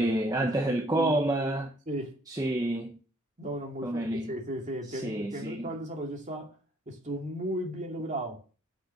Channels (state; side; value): normal; both; correlation 0.64